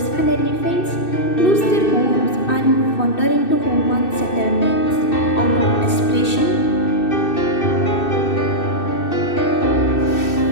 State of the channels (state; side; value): late; right; 2.6 ms